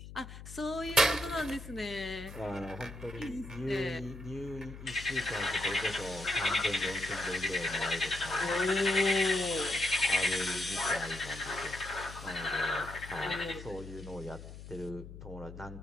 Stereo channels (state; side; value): noise; left; hum, 13 dB below the sound